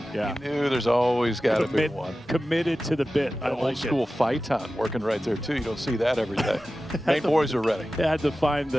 Yeah. You knew there's always got to be one. Committed to the bit. I old school Phaeton working right there too. You don't see that every day. Maine boys are ready. They had to find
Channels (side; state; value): both; normal; correlation 0.95